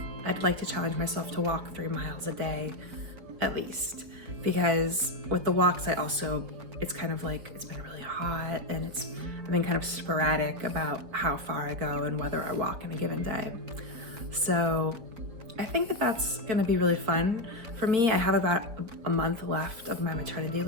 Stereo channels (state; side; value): late; left; 4.3 ms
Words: I'd like to challenge myself to walk 3 miles a day at least. Because with the walks, it's kind of it's been really hot, and I've been kind of sporadic about how far I go and whether I walk in a given day. So I think that that's gonna be really fun for me. I have about a month left of my maternity